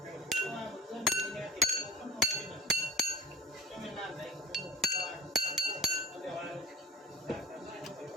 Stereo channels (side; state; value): both; normal; correlation 0.42